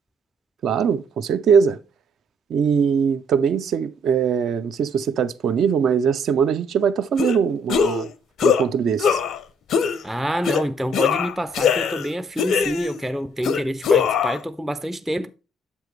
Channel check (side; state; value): both; normal; correlation 0.65